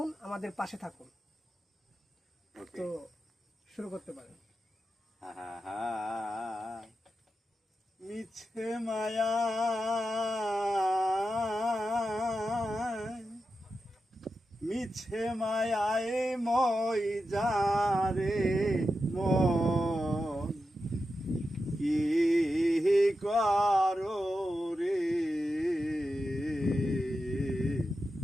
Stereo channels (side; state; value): both; normal; correlation 0.90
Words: আমাদের পাশে থাকুন। তো শুরু করতে পারেন। মিছে মায়া মিছে মায়ায় মই যারে মন কি করো রে,